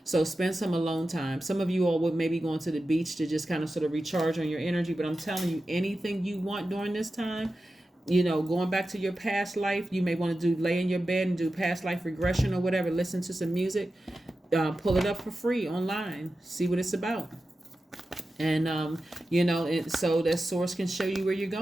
So spend some alone time. Some of you all would maybe going to the beach to just kind of sort of recharge on your energy, but I'm telling you, anything you want during this time, going back to your past life, you may want to lay in your bed and do past life regression or whatever, listen to some music, pull it up for free online, see what it's about. And, so that source can show you where you're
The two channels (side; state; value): both; normal; correlation 0.93